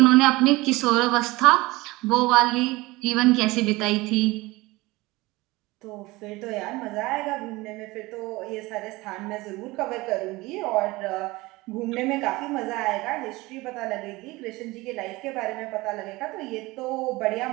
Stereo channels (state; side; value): quieter; left; 21.2 dB